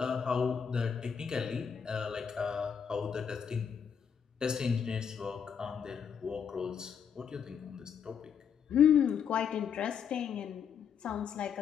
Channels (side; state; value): right; quieter; 7.2 dB